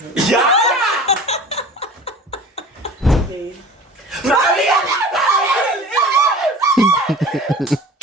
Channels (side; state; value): both; normal; correlation 0.41